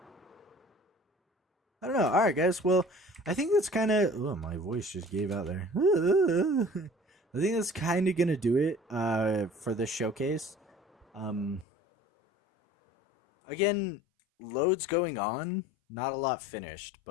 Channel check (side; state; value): right; drops out; at 11.7 s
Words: I don't know. All right, guys. Well, I think that's kind of... Oh, my voice just gave out there. I think that's kind of going to do it for this showcase. Again, loads going on. Not a lot finished,